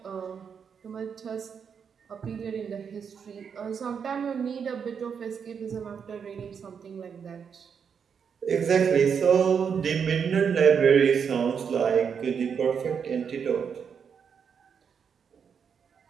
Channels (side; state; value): left; quieter; 6.8 dB